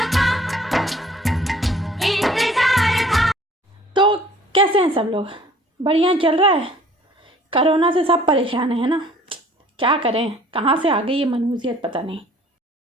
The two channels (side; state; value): both; normal; correlation 0.54